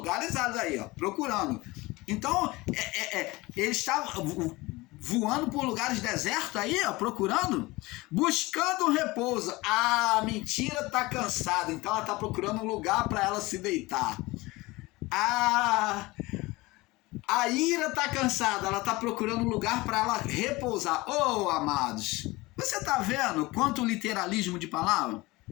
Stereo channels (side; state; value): right; quieter; 21.5 dB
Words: áridos aí, ó, procurando. Então ele está voando por lugares desertos aí, ó, procurando, buscando repouso. A mentira tá cansada, então ela tá procurando um lugar para ela se deitar. A ira está cansada, ela está procurando um lugar para ela repousar. Oh, amados, você está vendo quanto literalismo de palavra?